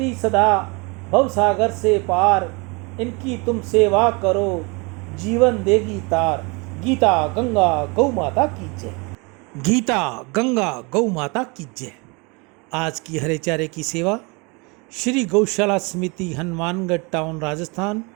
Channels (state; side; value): quieter; left; 29.1 dB